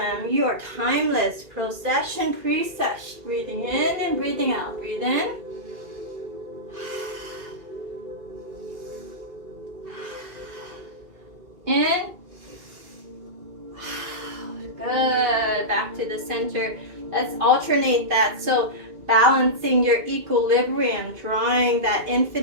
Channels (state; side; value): late; left; 2.5 ms